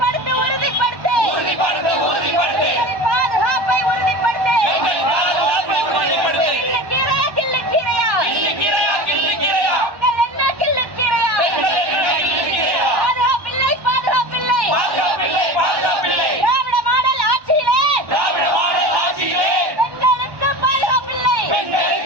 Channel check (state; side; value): late; left; 1.1 ms